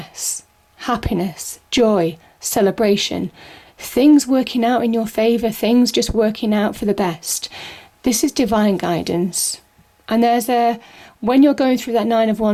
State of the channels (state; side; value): identical; both; correlation 1.00